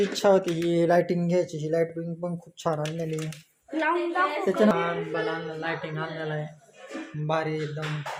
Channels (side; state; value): both; identical; correlation 1.00